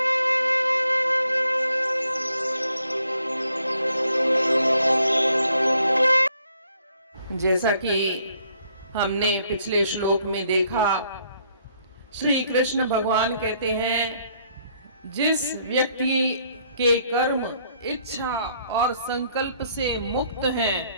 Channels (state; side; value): inverted; both; correlation -0.68